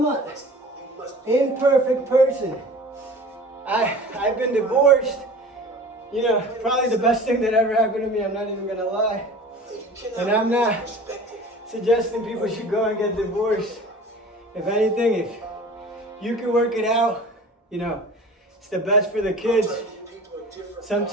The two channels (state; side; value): normal; both; correlation 0.41